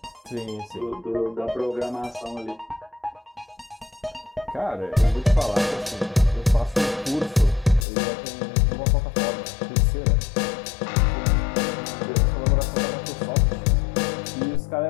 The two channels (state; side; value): drops out; right; at 7.9 s